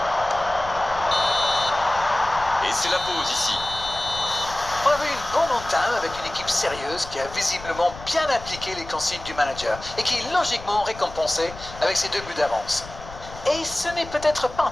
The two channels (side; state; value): left; noise; rumble, 15 dB below the sound